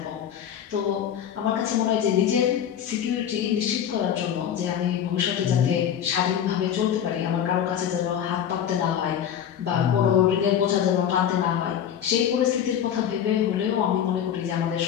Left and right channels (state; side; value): quieter; right; 9.4 dB